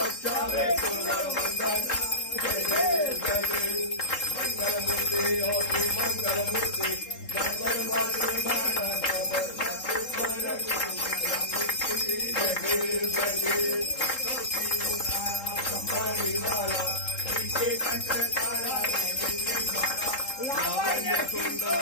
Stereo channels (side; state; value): right; late; 3.7 ms